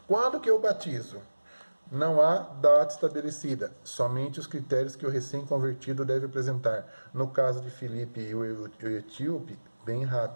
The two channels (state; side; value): inverted; both; correlation -1.00